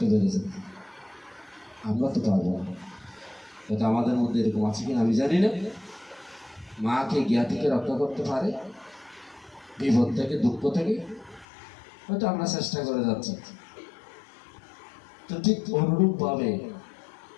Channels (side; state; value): right; drops out; at 11.5 s